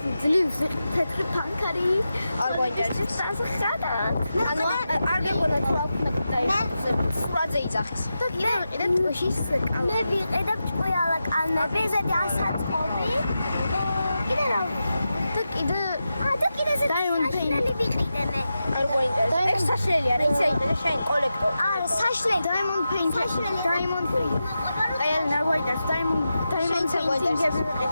ძლივს თეთრი პანკარი. არ გვაინტერესებს. ანუ არ გეგონა თუ აქვს მეტი სურაძე იძახის. და კიდე ვიყიდეთ ტუშის კალმები. მე ვიყიდებ ჭყუიალა კალმები, ზედი ასაწყობი. კიდე რა? და კიდე ზედი საშლელი ვიყიდე მე. არ გვაინტერესებს. ეს საშლელი არა, იცი აიტანე შენ კოლექტორ. არა, საშლელი. Diamond paint. Diamond paint. აი ელენე არ გვაინტერესებს. Diamond painting-ები ვიყიდეთ.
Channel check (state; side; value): inverted; both; correlation -0.90